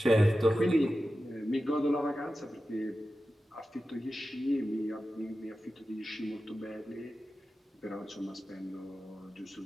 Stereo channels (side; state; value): both; normal; correlation 0.93